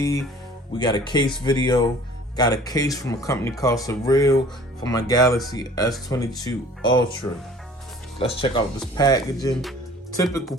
we got a case video. Got a case from a company called Cyrill for my Galaxy S22 Ultra. Let's check out this packaging. Typical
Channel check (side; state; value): both; normal; correlation 0.49